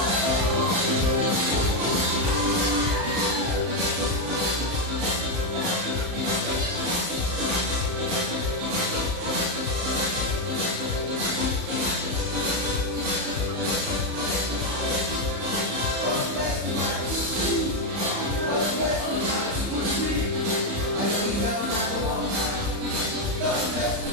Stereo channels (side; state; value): left; late; 35 ms